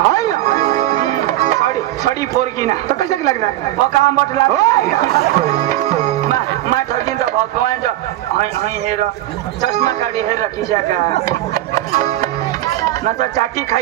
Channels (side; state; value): left; quieter; 14.6 dB